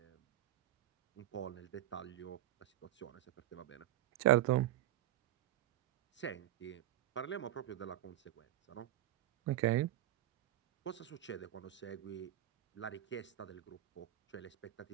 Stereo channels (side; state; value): left; quieter; 13.8 dB